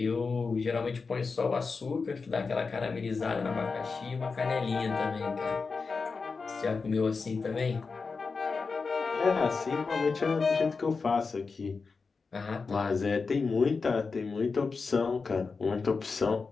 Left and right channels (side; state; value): right; quieter; 4.6 dB